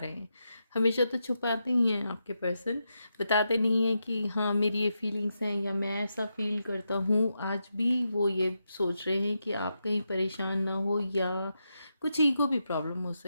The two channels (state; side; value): inverted; both; correlation -0.85